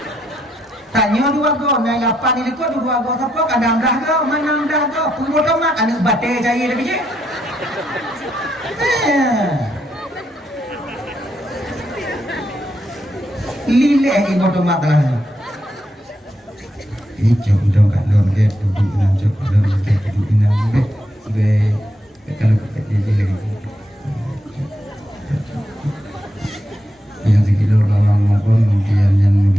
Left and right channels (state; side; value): normal; both; correlation 0.80